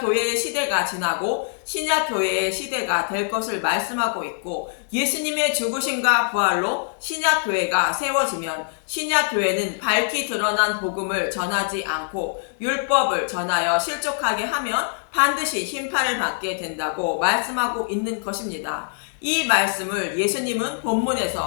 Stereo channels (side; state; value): right; silent; 63 dB below the other